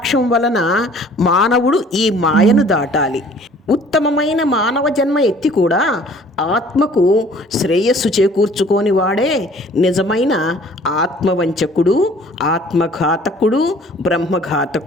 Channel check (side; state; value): both; normal; correlation 0.53